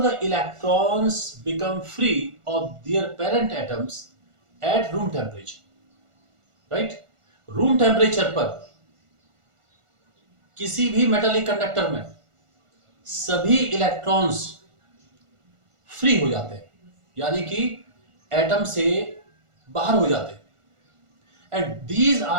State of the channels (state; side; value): late; left; 1.4 ms